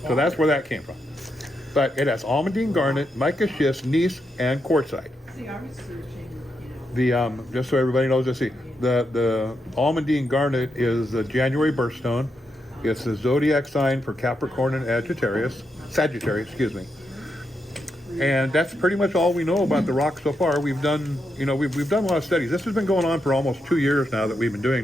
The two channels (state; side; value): normal; both; correlation 0.83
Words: So that's where that came from. But it has almandine garnet, mica schist, gneiss, and quartzite. Just so everybody knows, let's see. The almandine garnet is the January birthstone. It's the zodiac sign for Capricorn and Sagittarius, excuse me. And that's pretty much all we know about the rock so far. We've done a lot of studies. This has been going on for almost 2 years now that we've been doing